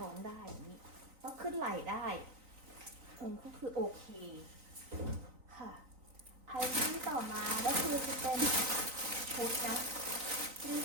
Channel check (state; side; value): late; left; 3.9 ms